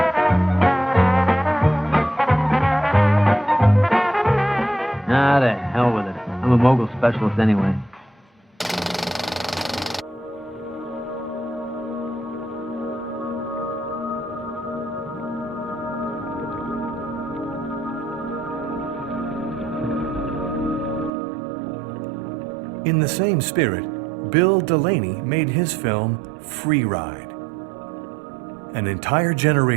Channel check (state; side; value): drops out; left; at 21.1 s